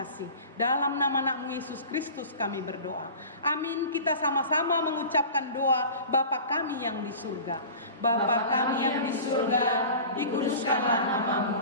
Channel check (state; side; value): inverted; both; correlation -0.37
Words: Dalam nama anak-Mu Yesus Kristus kami berdoa. Amin. Kita sama-sama mengucapkan doa Bapa kami yang di surga. Bapa kami yang di surga, dikuduskanlah nama-Mu.